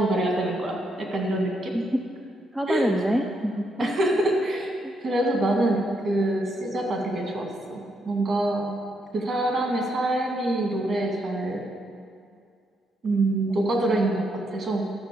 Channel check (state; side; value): normal; both; correlation 0.78